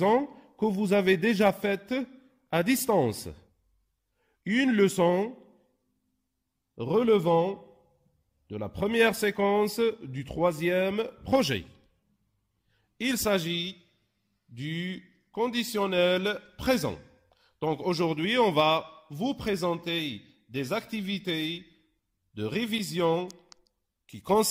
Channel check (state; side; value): identical; both; correlation 1.00